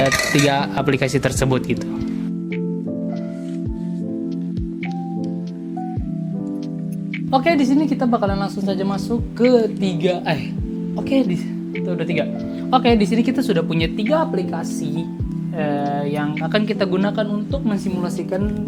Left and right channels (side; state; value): both; identical; correlation 1.00